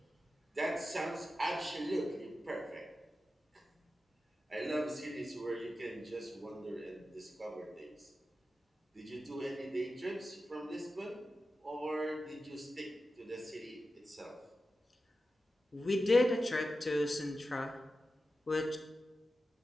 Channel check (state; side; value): normal; both; correlation 0.92